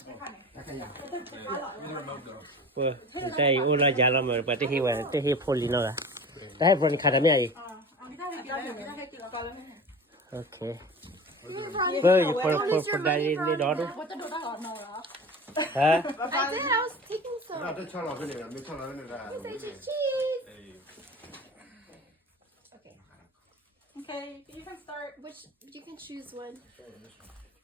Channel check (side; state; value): both; normal; correlation 0.36